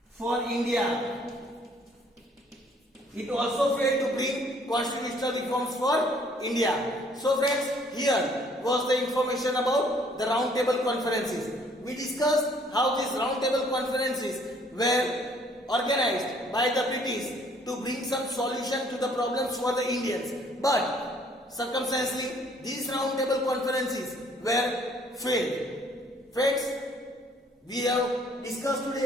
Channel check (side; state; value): both; normal; correlation 0.61